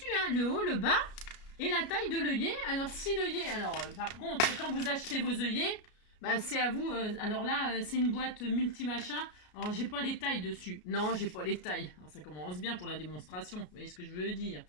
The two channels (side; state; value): right; late; 33 ms